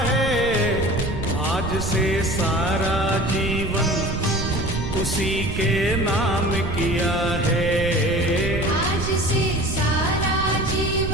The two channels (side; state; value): right; noise; rumble, 5 dB below the sound